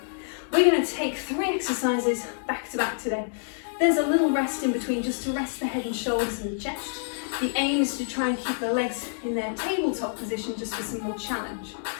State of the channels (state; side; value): silent; right; digital silence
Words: we're going to take 3 exercises back to back today. There's a little rest in between just to rest the head and shoulders and the chest. The aim is to try and keep the legs in their tabletop position just for some more challenge.